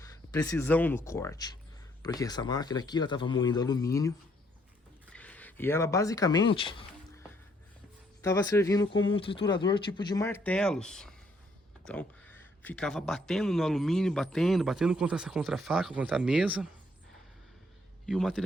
precisão no corte. Porque essa máquina aqui, ela estava moendo alumínio. E ela basicamente estava servindo como um triturador tipo de martelos. Então, ficava batendo no alumínio, batendo contra essa contrafaca, contra a mesa. E o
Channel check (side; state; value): both; normal; correlation 0.68